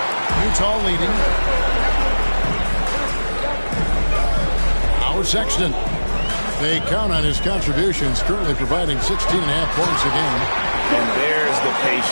Utah leading. Sexton. They count on his contributions, currently providing 16.5 points a game. And there's the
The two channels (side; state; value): both; inverted; correlation -1.00